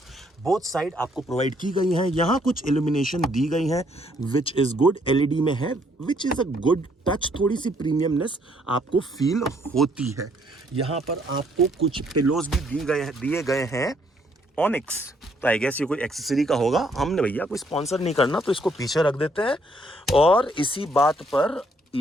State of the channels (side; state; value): both; normal; correlation 0.68